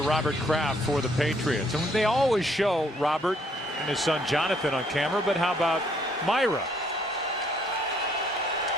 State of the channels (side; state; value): both; normal; correlation 0.67